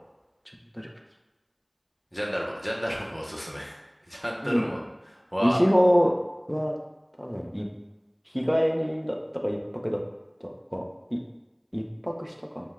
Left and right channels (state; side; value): identical; both; correlation 1.00